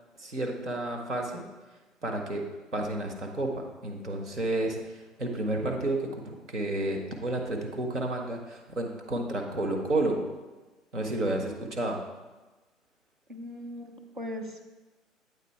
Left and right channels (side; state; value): both; normal; correlation 0.53